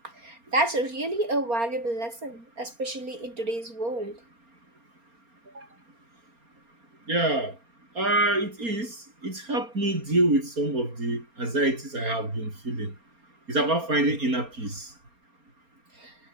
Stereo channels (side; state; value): left; late; 4.3 ms